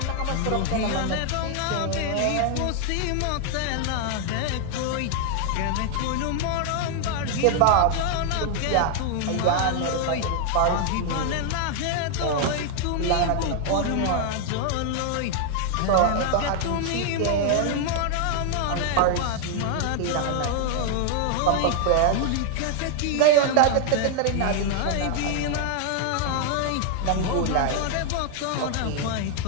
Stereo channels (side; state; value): both; different; correlation 0.00